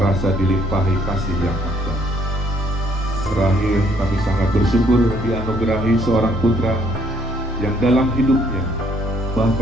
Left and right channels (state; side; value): normal; both; correlation 0.66